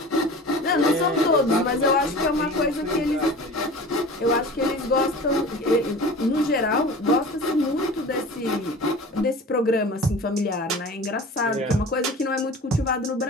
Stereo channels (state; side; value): normal; both; correlation 0.38